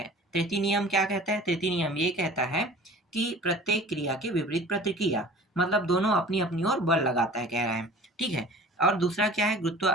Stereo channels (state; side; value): normal; both; correlation 0.44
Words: तृतीय नियम क्या कहता है? तृतीय नियम ये कहता है कि प्रत्येक क्रिया के विपरीत प्रतिक्रिया, मतलब दोनों अपनी अपनी ओर बल लगाता है, कह रहा है। ठीक है, और दूसरा क्या है?